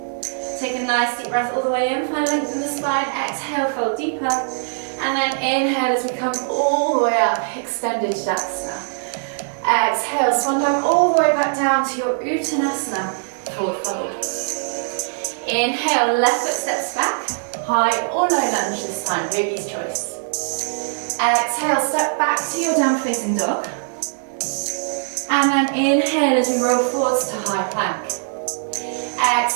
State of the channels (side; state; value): left; silent; digital silence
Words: Take a nice deep breath all the way in, find length in the spine, exhale, fold deeper, and then inhale as we come all the way up, extended Tadasana. Exhale, swan dive all the way back down to your Uttanasana, forward fold. Inhale, left foot steps back, high or low lunge this time, yogi's choice. Exhale, step back to your down facing dog. And then inhale as we roll forwards to high plank.